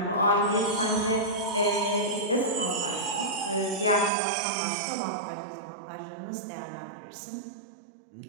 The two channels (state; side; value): drops out; left; at 4.1 s